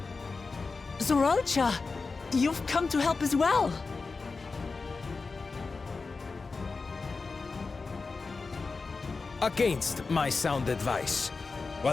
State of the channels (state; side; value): quieter; right; 4.2 dB